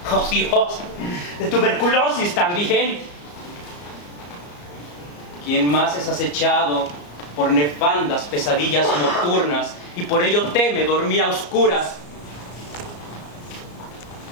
oh Dios, de tuberculosis también? ¿Quién más es acechado por nefandas pesadillas nocturnas y por ello teme dormir a oscuras?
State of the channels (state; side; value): late; right; 34 ms